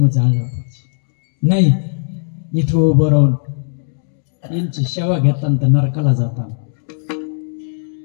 जाळलं पाहिजे. नाही इथं उभं राहून यांची सेवा घेताना तर नरकाला जातात,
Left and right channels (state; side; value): silent; right; digital silence